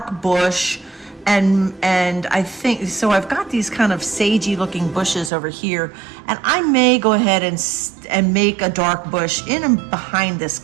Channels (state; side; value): drops out; left; at 5.3 s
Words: bush, and I think, so I've got these kind of sagey looking bushes over here, and I may go ahead and make a dark bush in and behind this